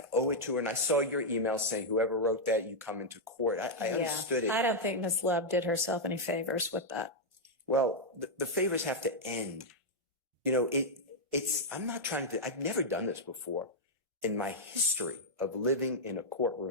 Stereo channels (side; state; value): both; normal; correlation -0.04